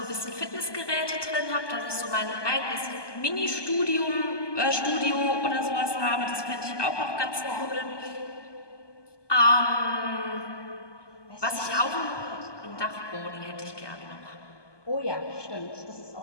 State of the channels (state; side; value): late; right; 1.2 ms